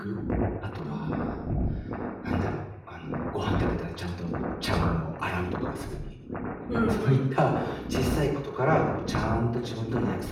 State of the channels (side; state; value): both; identical; correlation 1.00